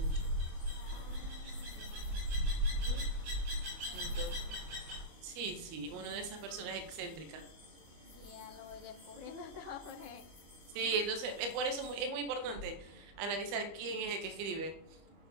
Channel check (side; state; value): left; late; 25 ms